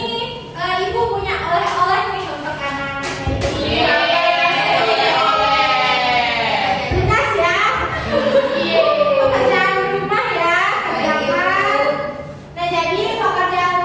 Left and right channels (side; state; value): both; identical; correlation 1.00